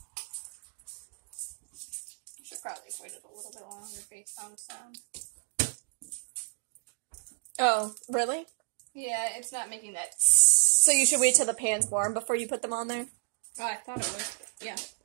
You should probably wait it a little bit longer based on the sound. Oh, really? Yeah, it's not making that. So you should wait till the pan's warm before you put them on there? Oh, I thought it was. Yeah.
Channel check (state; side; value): silent; left; digital silence